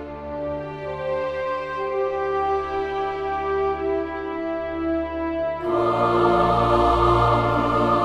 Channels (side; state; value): both; identical; correlation 1.00